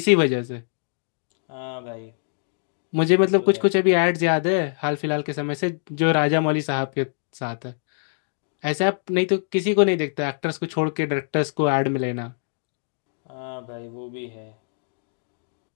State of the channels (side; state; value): right; silent; digital silence